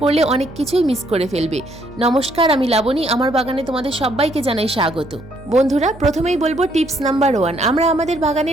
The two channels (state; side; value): noise; right; hum, 20 dB below the sound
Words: করলে অনেক কিছুই মিস করে ফেলবে। নমস্কার, আমি লাবণী, আমার বাগানে তোমাদের সবাইকে জানাই স্বাগত। বন্ধুরা, প্রথমেই বলবো টিপস নাম্বার 1, আমরা আমাদের